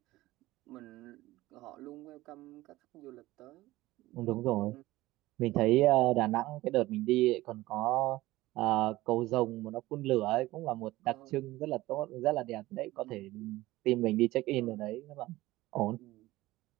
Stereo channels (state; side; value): quieter; left; 17.8 dB